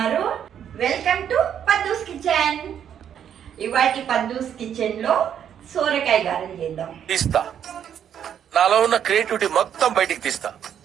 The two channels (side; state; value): left; quieter; 9.1 dB